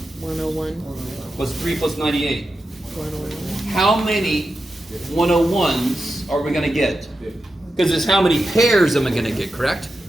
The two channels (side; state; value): both; normal; correlation 0.90